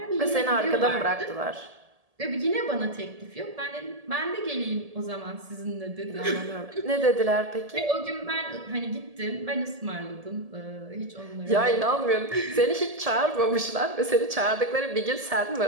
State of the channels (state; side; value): late; left; 1.7 ms